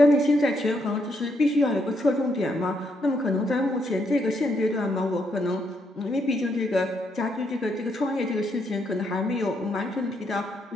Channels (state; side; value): normal; both; correlation 0.76